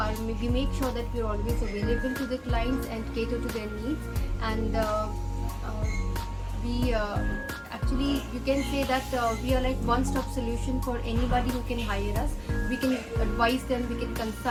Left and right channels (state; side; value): identical; both; correlation 1.00